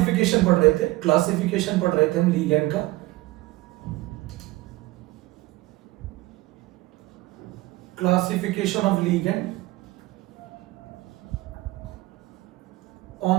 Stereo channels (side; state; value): left; quieter; 19.3 dB